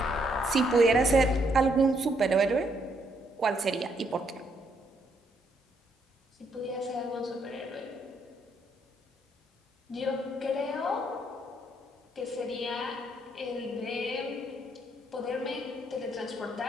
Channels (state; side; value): normal; both; correlation 0.73